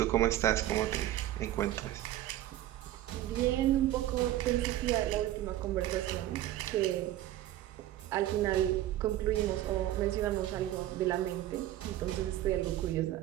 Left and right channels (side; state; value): left; quieter; 13.9 dB